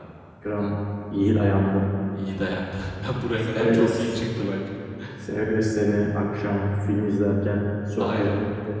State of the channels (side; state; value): both; identical; correlation 1.00